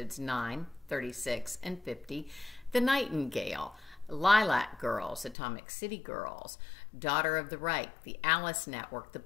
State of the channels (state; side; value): drops out; right; at 5.4 s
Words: 9, 36, and 50, The Nightingale, Lilac Girls, Atomic City Girls, Daughter of the Reich, The Alice Network, The